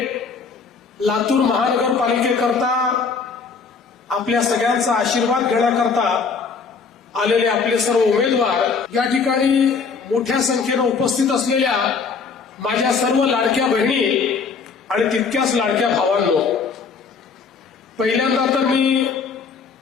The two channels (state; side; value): quieter; right; 5.2 dB